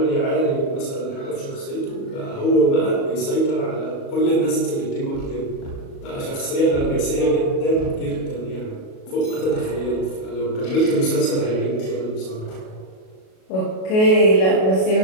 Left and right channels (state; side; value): late; right; 37 ms